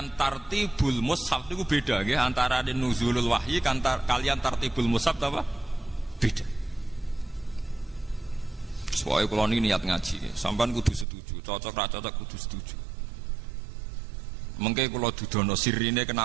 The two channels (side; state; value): left; drops out; at 11.1 s